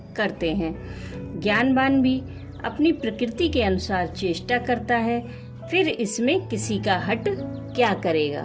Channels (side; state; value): both; identical; correlation 1.00